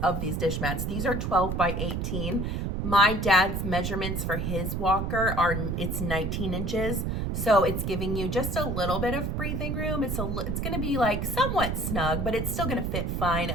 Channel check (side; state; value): right; noise; rumble, 1 dB below the sound